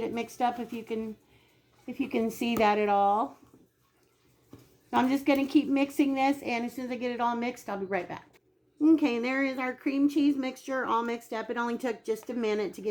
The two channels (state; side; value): identical; both; correlation 1.00